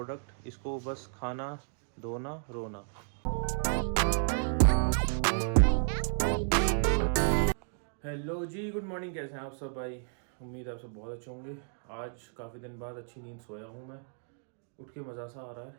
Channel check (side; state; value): left; silent; digital silence